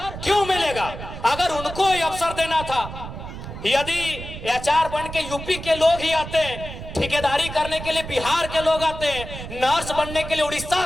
क्यों मिलेगा? अगर उनको ये अवसर देना था, यदि एचआर बन के यूपी के लोग ही आते, ठेकेदारी करने के लिए बिहार के लोग आते, नर्स बनने के लिए उड़ीसा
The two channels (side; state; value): right; noise; rumble, 10 dB below the sound